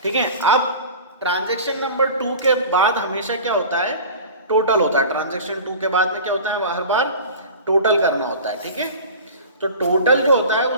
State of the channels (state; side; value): inverted; both; correlation -0.37